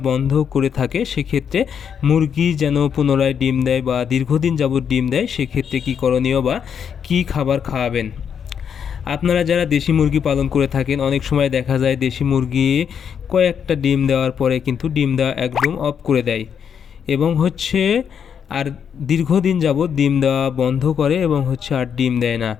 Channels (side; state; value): right; quieter; 7.6 dB